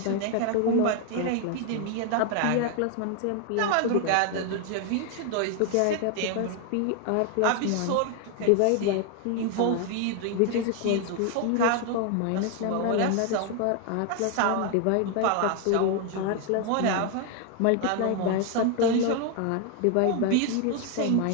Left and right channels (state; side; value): different; both; correlation 0.00